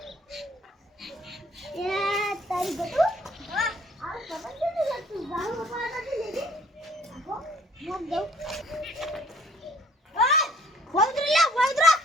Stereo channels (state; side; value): normal; both; correlation 0.58